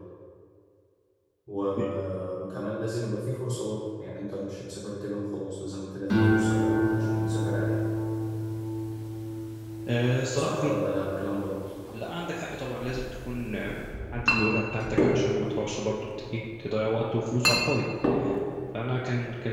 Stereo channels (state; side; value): identical; both; correlation 1.00